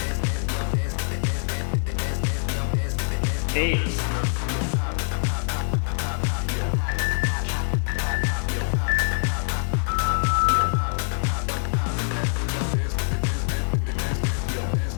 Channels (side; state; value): right; silent; digital silence